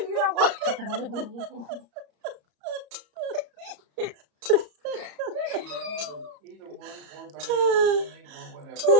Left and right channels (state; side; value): late; left; 34 ms